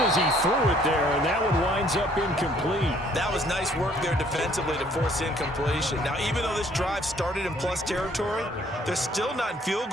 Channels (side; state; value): both; normal; correlation 0.61